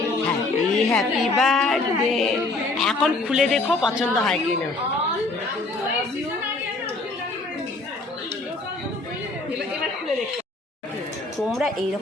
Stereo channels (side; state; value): right; quieter; 3.2 dB